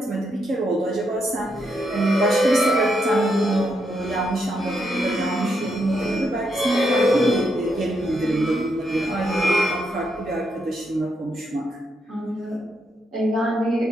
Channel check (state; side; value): normal; both; correlation 0.80